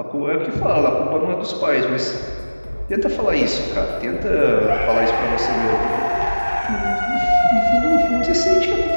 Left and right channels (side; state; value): both; inverted; correlation -1.00